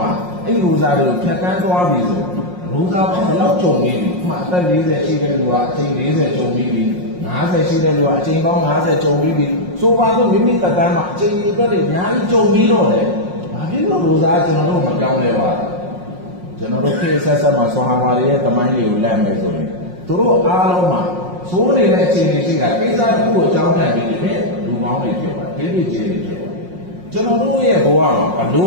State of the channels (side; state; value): left; late; 5.5 ms